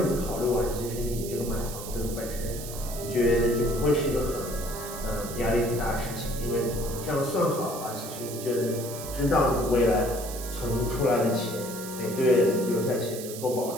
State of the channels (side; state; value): right; noise; hiss, 11 dB below the sound